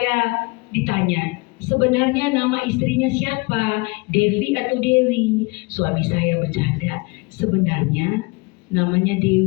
ditanya, sebenarnya nama istrinya siapa? Devi atau Dewi? Suami saya bercanda, sebenarnya namanya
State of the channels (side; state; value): right; quieter; 27.4 dB